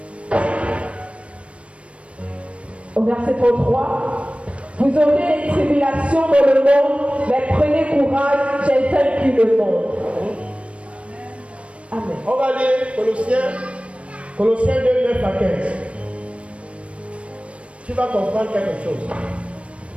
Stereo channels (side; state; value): left; late; 0.062 ms